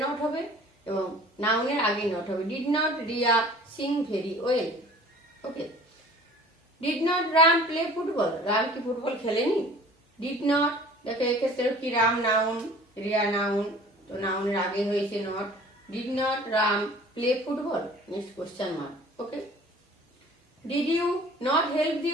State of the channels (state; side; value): normal; both; correlation 0.47